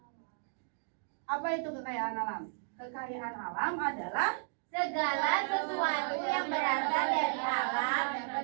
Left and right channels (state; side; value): silent; left; digital silence